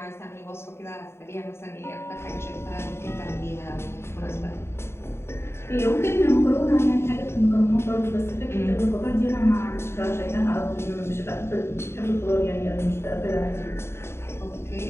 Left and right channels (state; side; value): late; right; 0.12 ms